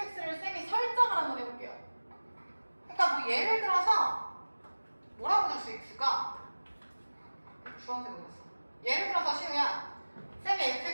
쌤이 설정을 한번 해볼게요. 그러니까 뭐 예를 들어서 뭐라고 될 수 있을까? 주황색으로 했어. 예를 들어서 시우야 쌤이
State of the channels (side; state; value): both; inverted; correlation -1.00